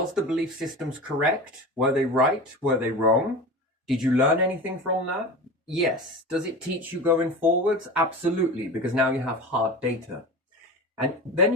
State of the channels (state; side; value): normal; both; correlation 0.31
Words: the belief systems correct? Were they right? Were they wrong? Did you learn anything from that? Yes. Does it teach you going forwards? Absolutely, because now you have hard data. And then